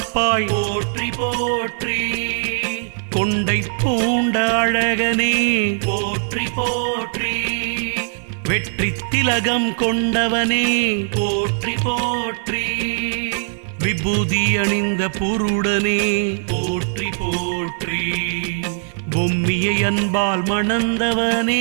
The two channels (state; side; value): silent; left; 66 dB below the other